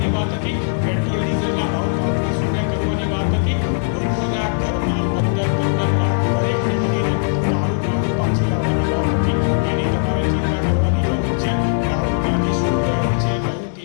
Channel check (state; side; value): silent; right; digital silence